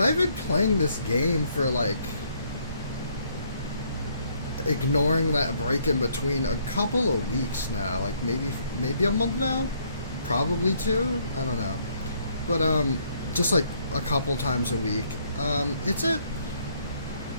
been playing this game for like, ignoring that break in between, a couple of weeks now. Like maybe a month now, probably two. I don't know, but just like a couple times a week. It's a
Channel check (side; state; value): both; inverted; correlation -0.68